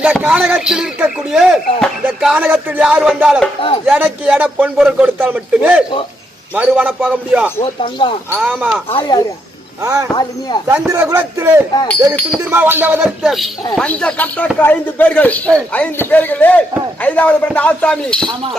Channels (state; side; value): normal; both; correlation 0.78